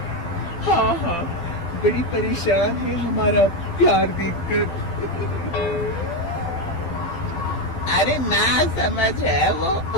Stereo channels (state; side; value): late; right; 12 ms